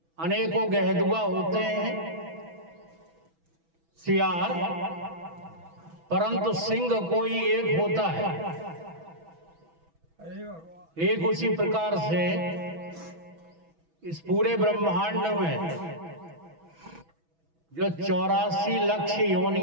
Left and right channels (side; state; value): left; late; 6.1 ms